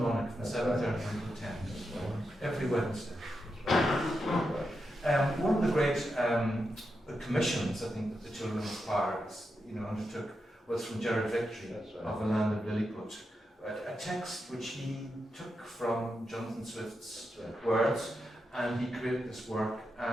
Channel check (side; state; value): both; normal; correlation 0.87